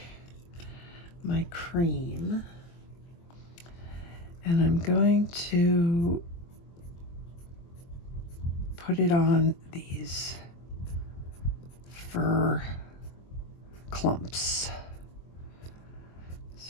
my cream and I'm going to put it on these fur clumps.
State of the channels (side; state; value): right; late; 23 ms